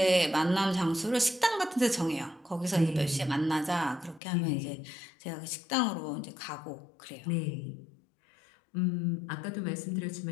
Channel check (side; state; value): right; drops out; at 4.2 s